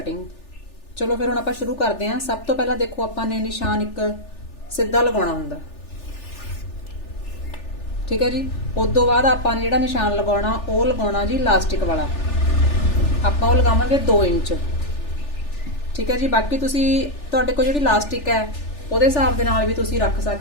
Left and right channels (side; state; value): right; late; 3.4 ms